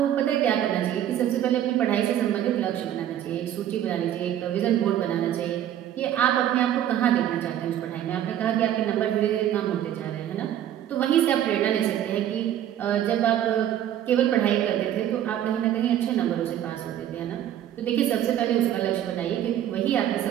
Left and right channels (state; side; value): quieter; left; 11.1 dB